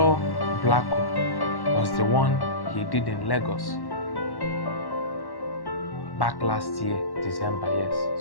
Blacko was the one he did in Lagos. Back last year, December,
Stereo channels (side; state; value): right; late; 1.1 ms